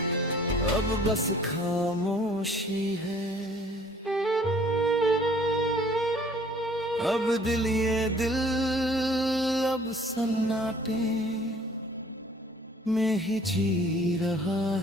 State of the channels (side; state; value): both; normal; correlation 0.55